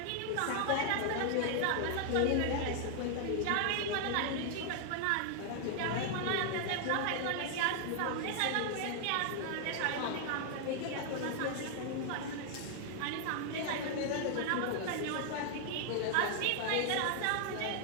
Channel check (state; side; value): different; both; correlation 0.00